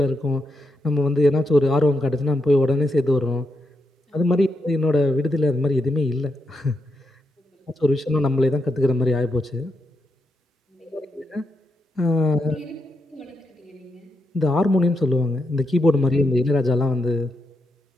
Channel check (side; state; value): both; normal; correlation 0.83